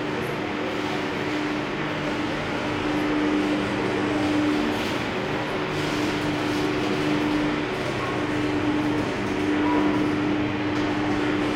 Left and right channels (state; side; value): identical; both; correlation 1.00